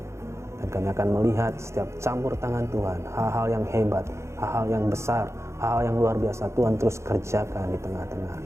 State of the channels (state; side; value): late; left; 0.14 ms